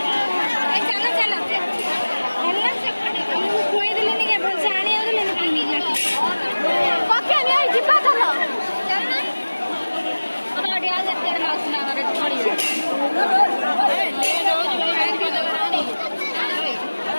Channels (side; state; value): both; inverted; correlation -1.00